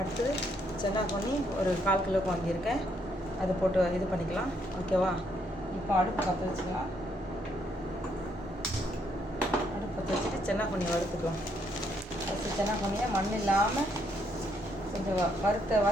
சென்னாப்பொனி ஒரு 1/4 கிலோக்கு வாங்கியிருக்கேன். அதை போட்டு இது பண்ணிக்கலாம், ஓகேவா? இப்போ அடுப்பு பற்ற வச்சுக்கலாம். அடுப்பு பற்ற வச்சுட்டு சென்னாப்பொனி வறுத்துக்கலாம். அடுத்து சென்னாப்பொனியை மண் இல்லாமல் கொஞ்சம்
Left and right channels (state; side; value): normal; both; correlation 0.73